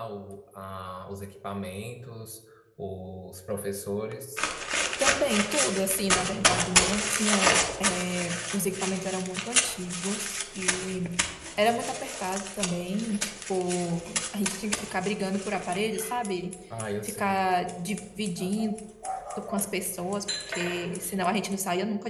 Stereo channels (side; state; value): both; identical; correlation 1.00